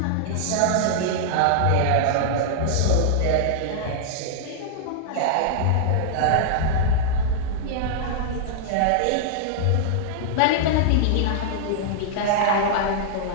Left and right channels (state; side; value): different; both; correlation -0.01